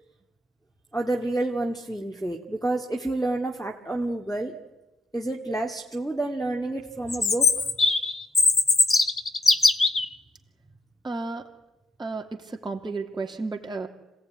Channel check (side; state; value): both; normal; correlation 0.77